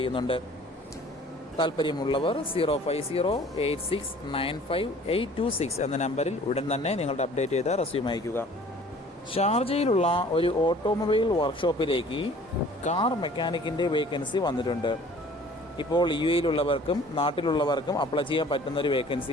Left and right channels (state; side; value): normal; both; correlation 0.51